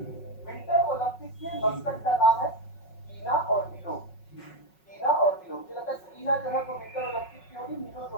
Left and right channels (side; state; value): right; late; 5.4 ms